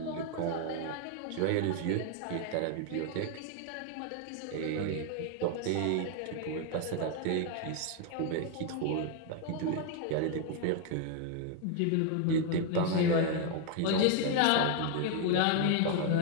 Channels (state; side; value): different; both; correlation 0.01